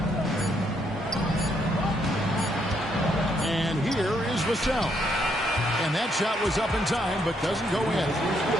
And here is Vassell. And that shot was up in time, but doesn't go in.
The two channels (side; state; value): both; normal; correlation 0.74